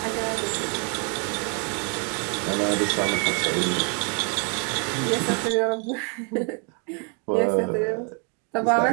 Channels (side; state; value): left; quieter; 37.2 dB